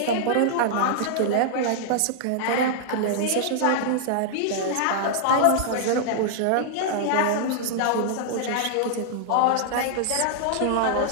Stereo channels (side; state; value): both; different; correlation -0.01